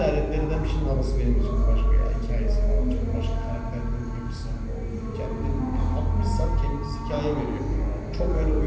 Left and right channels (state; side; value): identical; both; correlation 1.00